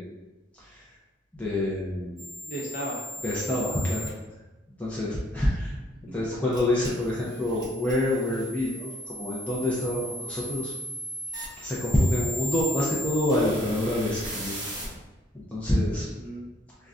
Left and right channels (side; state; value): both; normal; correlation 0.65